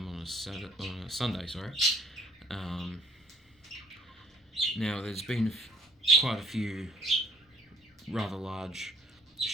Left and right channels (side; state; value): both; normal; correlation 0.61